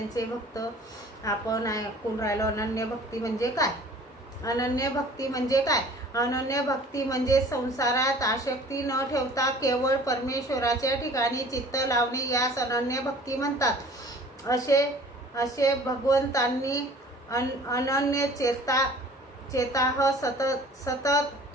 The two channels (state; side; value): normal; both; correlation 0.48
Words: भक्त, आपण ऐकून राहिलो अनन्य भक्ती म्हणजे काय। अनन्य भक्ती म्हणजे काय? अनन्य भक्ती म्हणजे संसारात आसक्ती न ठेवता केवळ परमेश्वराच्या ठिकाणी चित्त लावणे, यास अनन्य भक्ती म्हणतात। असे भगवंतांनी अनन्य चेताह